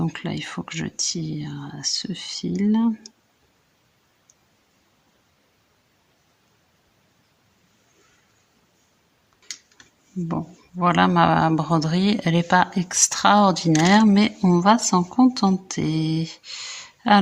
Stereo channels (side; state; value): both; identical; correlation 1.00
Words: là, il faut que je tire ce fil. Bon, voilà ma broderie. Elle n'est pas extraordinaire, mais on va s'en contenter.